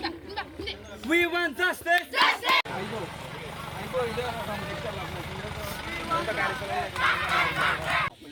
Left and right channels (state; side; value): identical; both; correlation 1.00